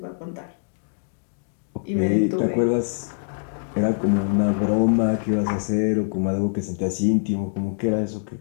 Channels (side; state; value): right; silent; digital silence